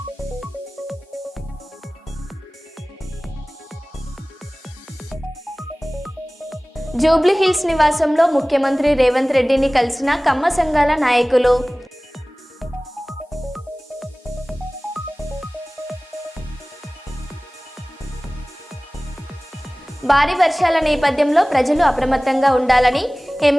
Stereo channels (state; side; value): normal; both; correlation 0.98